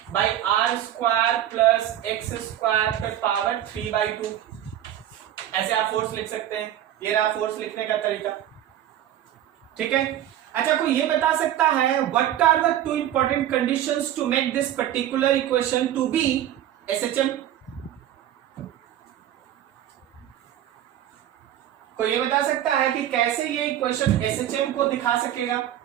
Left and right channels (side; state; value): left; quieter; 11.8 dB